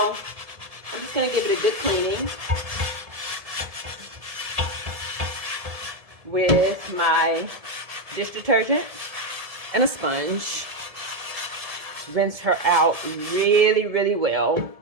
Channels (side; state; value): left; late; 1.7 ms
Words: I'm just going to give it a good cleaning with my dish detergent and a sponge. Rinse her out really, really well.